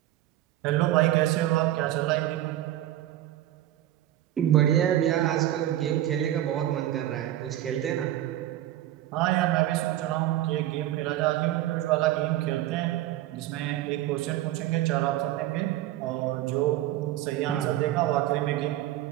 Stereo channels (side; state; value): left; quieter; 13.9 dB